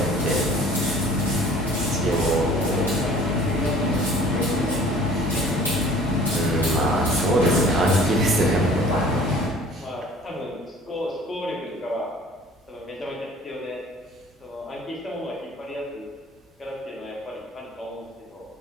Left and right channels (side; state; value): both; normal; correlation 0.49